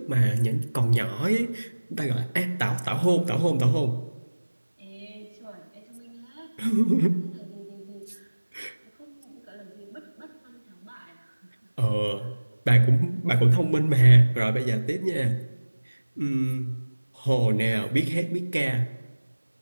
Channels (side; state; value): both; inverted; correlation -1.00